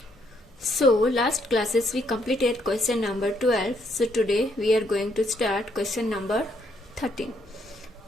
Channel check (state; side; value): normal; both; correlation 0.72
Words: So last classes we completed question number 12. So today we are going to start question number 13.